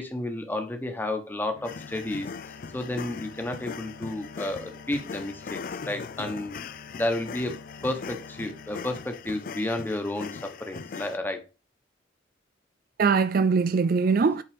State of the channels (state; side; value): normal; both; correlation 0.55